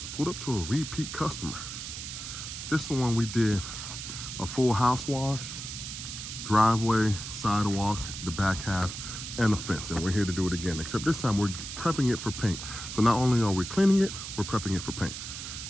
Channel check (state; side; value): noise; right; hiss, 8 dB below the sound